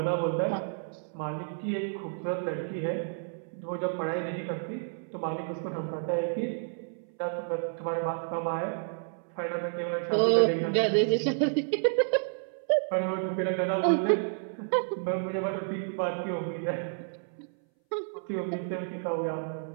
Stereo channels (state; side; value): silent; left; 58 dB below the other